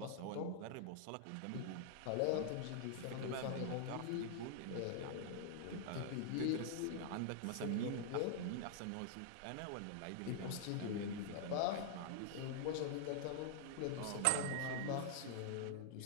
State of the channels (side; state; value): both; different; correlation -0.01